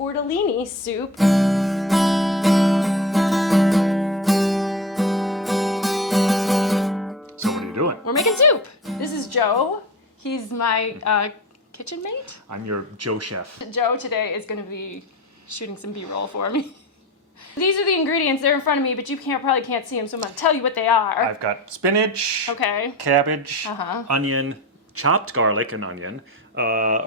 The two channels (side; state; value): both; normal; correlation 0.30